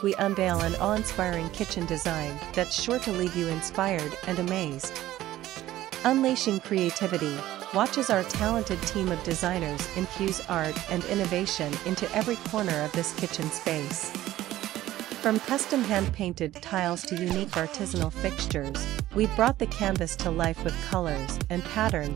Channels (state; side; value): quieter; left; 14.7 dB